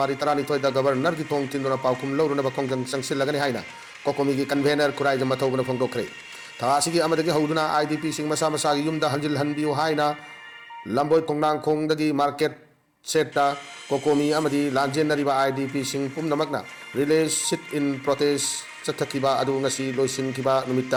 32 da governor gi thong tinduna paukum law na ba kongjang sangsilagani haina. Kokomigi convener kurai jama thawbana phongdok kre. Thasigi amadagi hauduna IDP sing masa masagi yumda hanjil hanbiu haina lamboi kongnang kongdagi market seta kokomi amadi lanjen nariba IDP sing pumnamakna relay sit in protest chathakiba adu ngasi loisin kiba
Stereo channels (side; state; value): both; identical; correlation 1.00